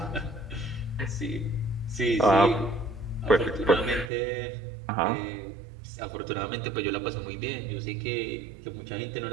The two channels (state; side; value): drops out; left; at 4.1 s